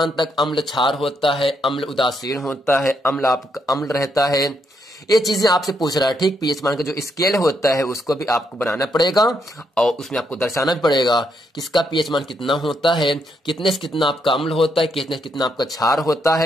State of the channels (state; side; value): normal; both; correlation 0.78